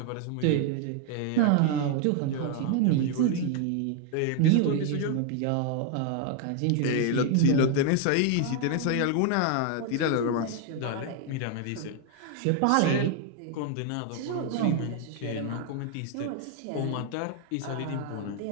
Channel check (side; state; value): both; different; correlation 0.00